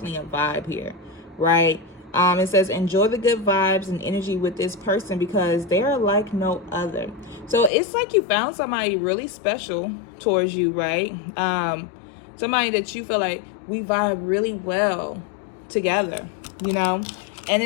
a vibe here, right? It says enjoy the good vibes and energy with this person because they are like no other. So it's like you found somebody really special towards you, right? Somebody that you feel like we vibe really well together, and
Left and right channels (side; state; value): right; drops out; at 7.7 s